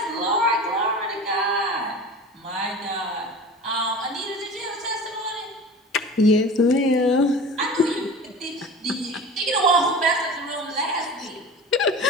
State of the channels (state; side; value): normal; both; correlation 0.37